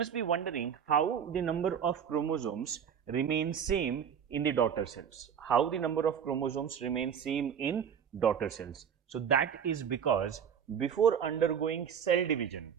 be wondering how the number of chromosomes remain same in the daughter cells. How the number of chromosomes remain same in daughter cells. So that is because before undergoing cell division,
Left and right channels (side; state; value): left; quieter; 7.8 dB